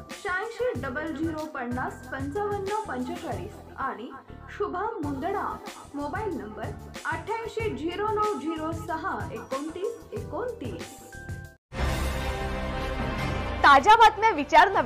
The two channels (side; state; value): both; identical; correlation 1.00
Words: 8600505545 आणि शुभम मुंदडा। Mobile number 8809062929। ताज्या बातम्या विचार